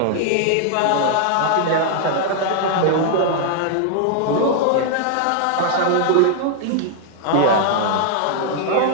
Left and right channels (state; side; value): different; both; correlation -0.01